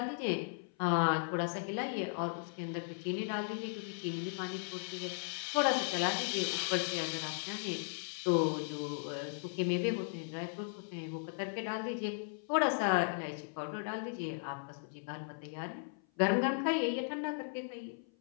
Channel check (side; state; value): right; silent; 53 dB below the other